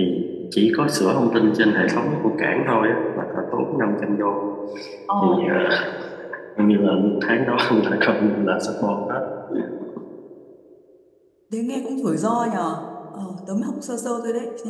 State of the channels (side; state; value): both; identical; correlation 1.00